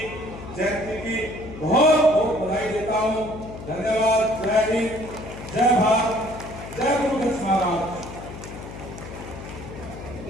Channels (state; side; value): noise; left; hum, 12 dB below the sound